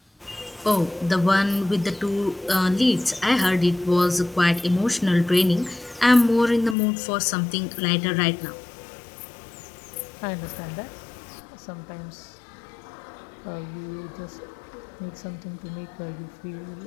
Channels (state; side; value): drops out; right; at 6.8 s